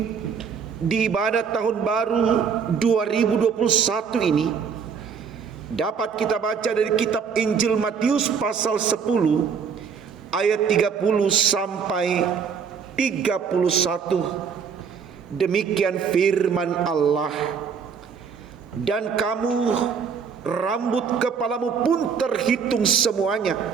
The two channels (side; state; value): left; quieter; 6.4 dB